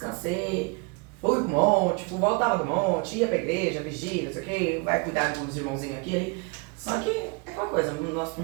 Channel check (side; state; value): left; quieter; 28.7 dB